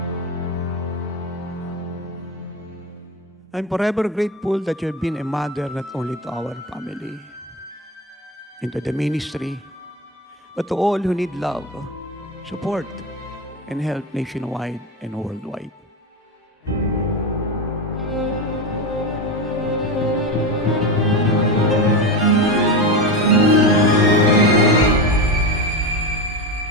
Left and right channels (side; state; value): both; normal; correlation 0.19